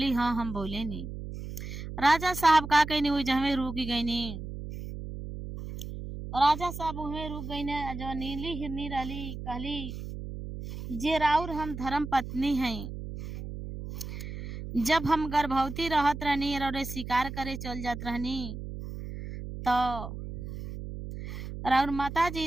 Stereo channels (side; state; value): right; noise; hum, 8 dB below the sound